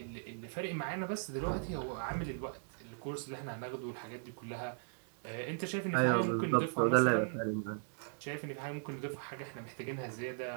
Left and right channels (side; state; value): left; silent; digital silence